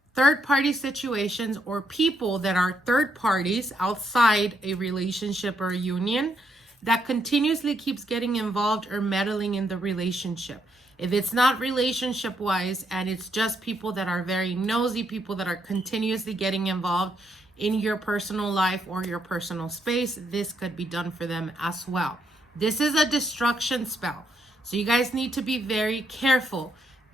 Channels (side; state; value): both; normal; correlation 0.76